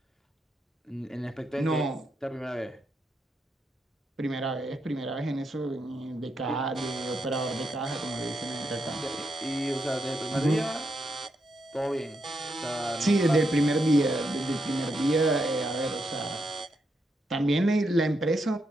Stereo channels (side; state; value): both; normal; correlation 0.82